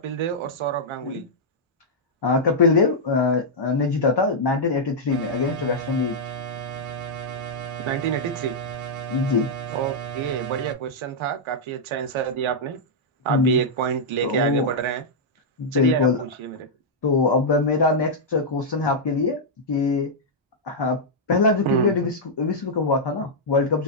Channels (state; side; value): normal; both; correlation -0.06